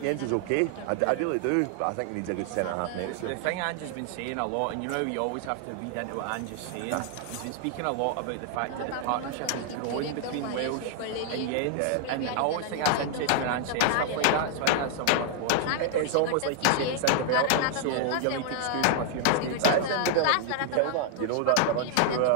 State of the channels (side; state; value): both; different; correlation 0.00